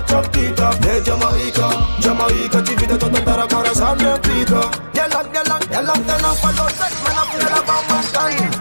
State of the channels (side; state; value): both; inverted; correlation -1.00